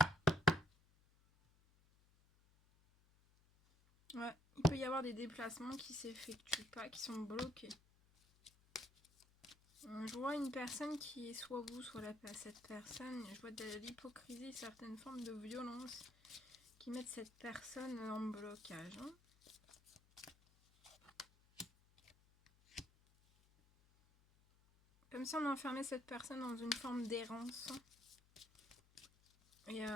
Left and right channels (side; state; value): left; noise; hum, 29 dB below the sound